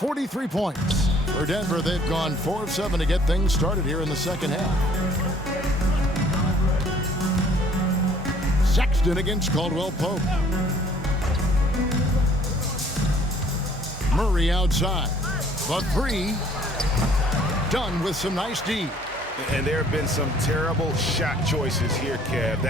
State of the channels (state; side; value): normal; both; correlation 0.58